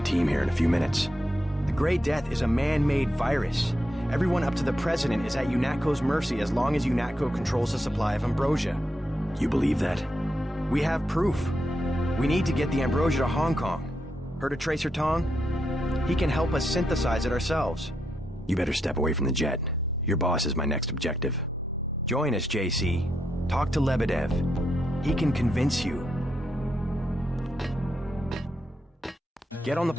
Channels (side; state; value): both; normal; correlation 0.82